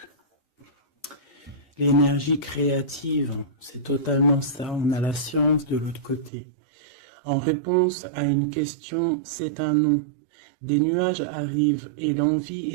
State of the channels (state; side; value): drops out; left; at 6.3 s